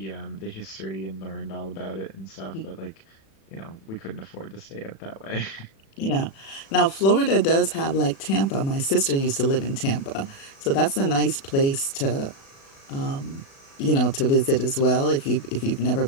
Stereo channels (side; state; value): right; late; 36 ms